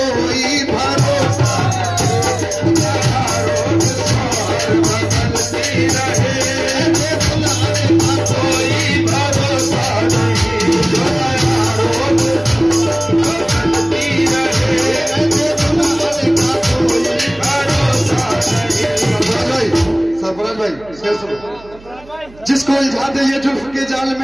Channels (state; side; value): noise; right; hum, 23 dB below the sound